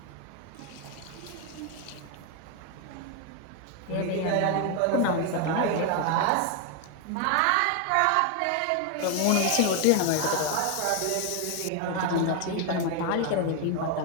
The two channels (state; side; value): different; both; correlation 0.01